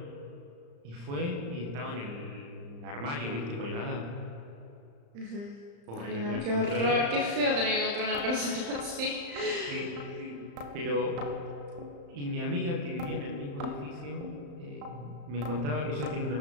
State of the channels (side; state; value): left; late; 35 ms